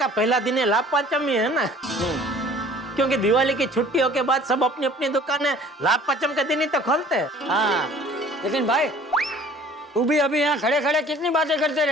पहला दिन है लाभ पंचमी है ना। क्योंकि दिवाली की छुट्टियों के बाद सब अपनी अपनी दुकानें लाभ पंचम के दिन ही तो खोलते हैं। हाँ लेकिन भाई तू भी अभी यहाँ खड़े खड़े कितनी बातें करते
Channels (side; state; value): both; normal; correlation 0.50